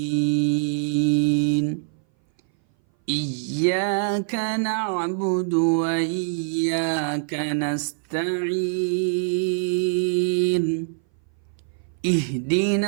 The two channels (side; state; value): left; silent; 59 dB below the other